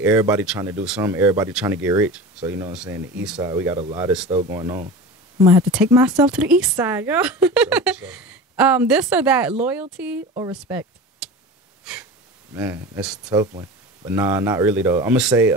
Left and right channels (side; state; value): both; normal; correlation 0.32